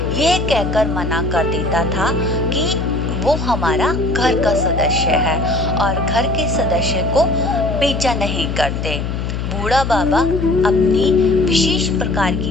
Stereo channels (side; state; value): left; noise; hum, 3 dB below the sound